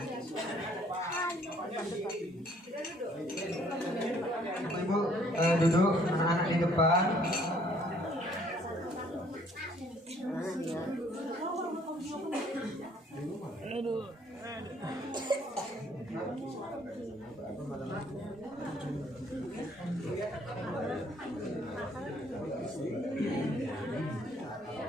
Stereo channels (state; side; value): normal; both; correlation 0.62